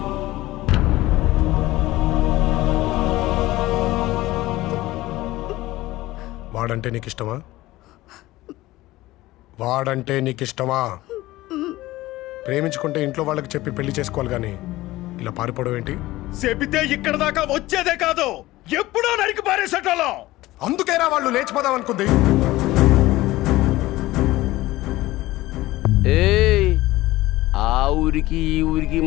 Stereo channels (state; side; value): quieter; right; 17.7 dB